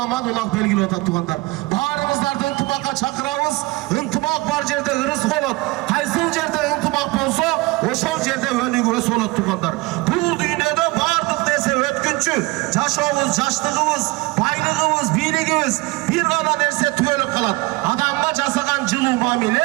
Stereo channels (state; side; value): quieter; left; 23.3 dB